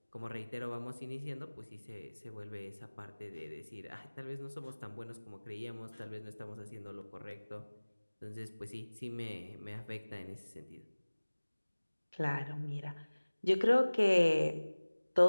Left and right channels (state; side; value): inverted; both; correlation -1.00